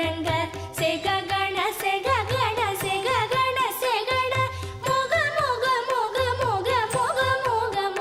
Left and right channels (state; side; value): identical; both; correlation 1.00